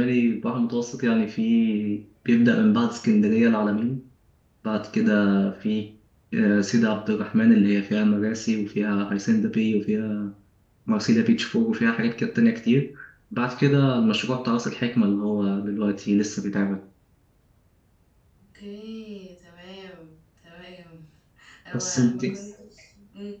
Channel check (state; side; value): identical; both; correlation 1.00